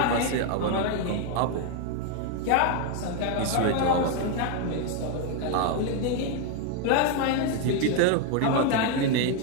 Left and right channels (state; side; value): different; both; correlation 0.01